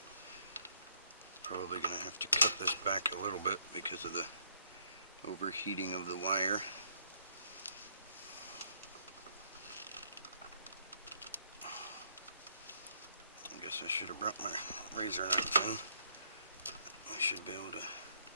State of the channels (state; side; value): inverted; both; correlation -0.69